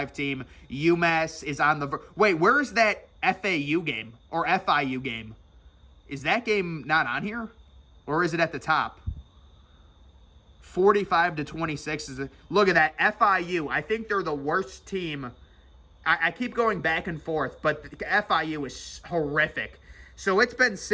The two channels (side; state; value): both; identical; correlation 1.00